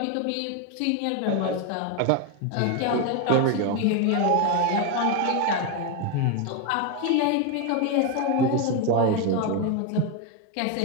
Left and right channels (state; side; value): different; both; correlation 0.02